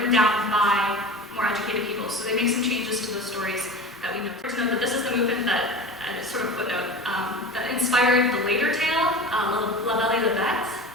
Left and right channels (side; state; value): both; normal; correlation 0.33